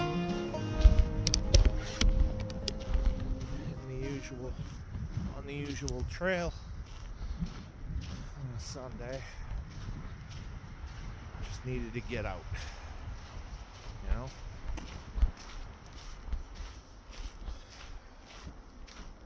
On the usual trail on a Sunday. Just needed to get out, you know?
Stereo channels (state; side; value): identical; both; correlation 1.00